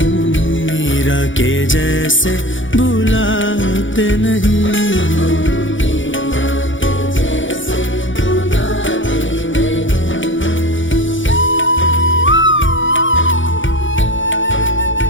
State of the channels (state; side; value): late; right; 0.56 ms